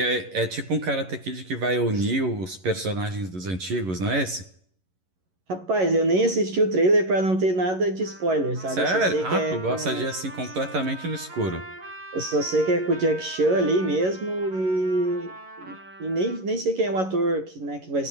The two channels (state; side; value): late; left; 11 ms